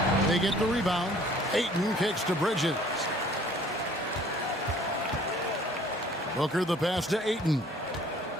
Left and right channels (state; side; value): normal; both; correlation 0.54